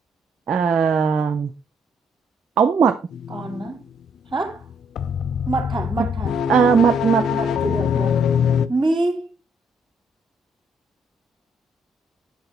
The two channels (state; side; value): normal; both; correlation 0.70